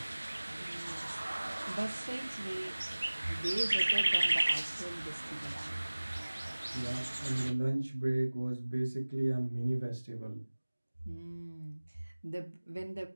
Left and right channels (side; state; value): both; inverted; correlation -1.00